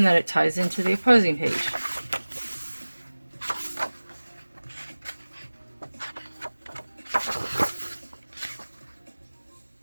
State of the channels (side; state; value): both; inverted; correlation -1.00